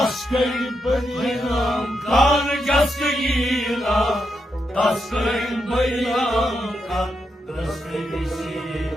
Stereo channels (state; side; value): normal; both; correlation 0.83